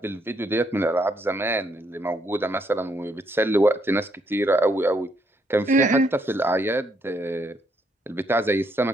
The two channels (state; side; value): normal; both; correlation 0.73